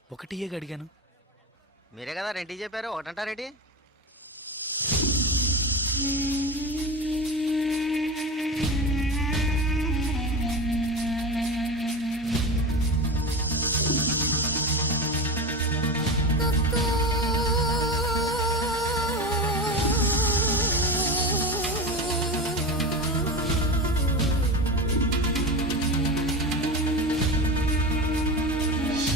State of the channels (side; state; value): both; normal; correlation 0.24